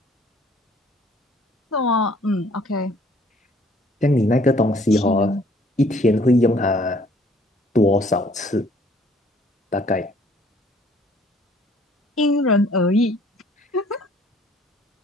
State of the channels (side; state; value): both; normal; correlation 0.58